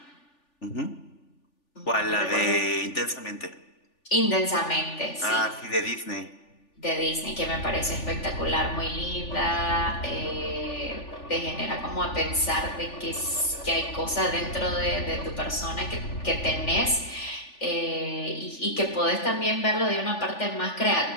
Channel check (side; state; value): right; late; 3.4 ms